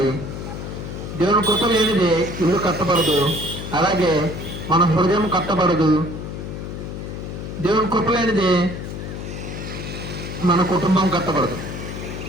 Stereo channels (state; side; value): noise; left; hum, 7 dB below the sound